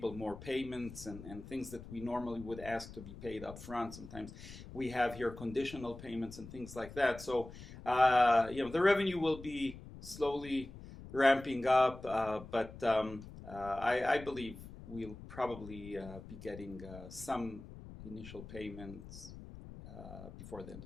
more payments and things that we normally would ask to be paid up front. Sometimes we have here conditional payments and things like that. So, the revenue will be slowly ramping up, but I believe we'll probably be getting some initial payments before the end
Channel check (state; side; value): noise; left; rumble, 14 dB below the sound